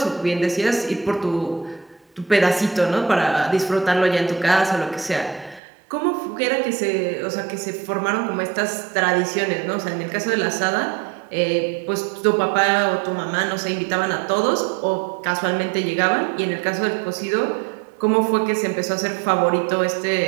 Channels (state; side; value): drops out; left; at 5.6 s